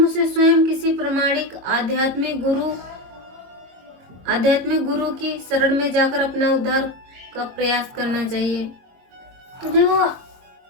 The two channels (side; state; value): left; late; 22 ms